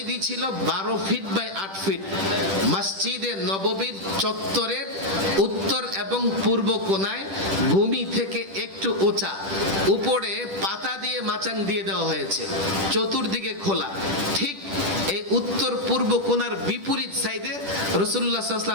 ছিল ১২ ফিট বাই ৮ ফিট। মসজিদে নববীর চত্বরের উত্তর এবং পূর্ব কোণায় ভূমি থেকে একটু উঁচা, উপরে পাতা দিয়ে মাচাং দিয়ে দেওয়া হয়েছে, চতুর্দিকে খোলা। ঠিক এই উত্তর পূর্ব কোণার বিপরীত সাইডে রাসূলুল্লাহ সাল্লাল্লাহু আলাইহি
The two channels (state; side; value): late; left; 10 ms